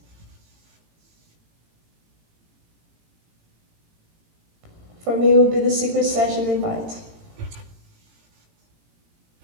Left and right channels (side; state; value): left; late; 18 ms